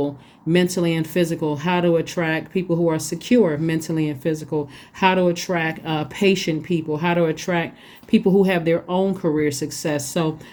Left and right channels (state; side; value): identical; both; correlation 1.00